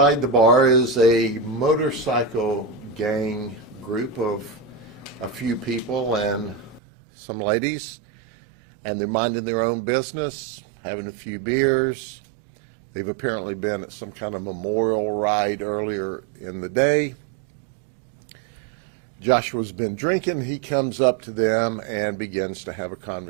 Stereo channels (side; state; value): left; drops out; at 6.8 s